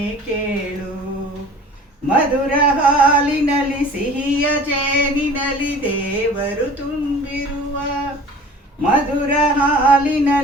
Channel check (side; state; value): both; normal; correlation 0.44